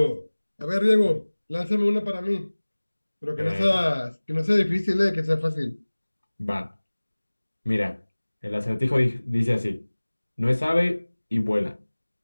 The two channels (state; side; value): inverted; both; correlation -1.00